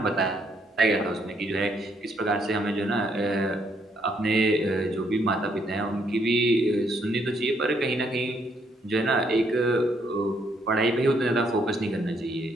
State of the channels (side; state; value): both; normal; correlation 0.71